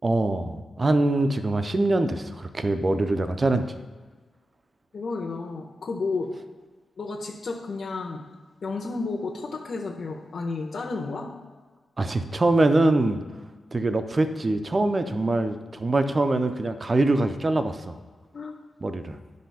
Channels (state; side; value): normal; both; correlation 0.92